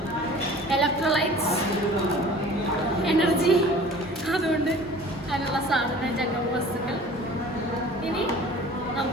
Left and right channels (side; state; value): both; normal; correlation 0.45